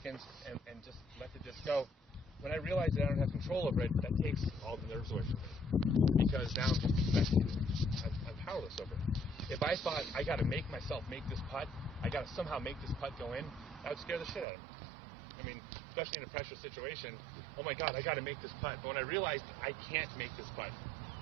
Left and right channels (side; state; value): left; drops out; at 14.5 s